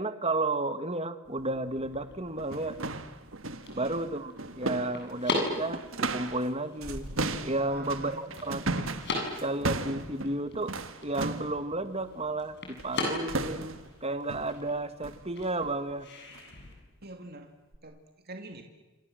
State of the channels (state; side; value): normal; both; correlation 0.17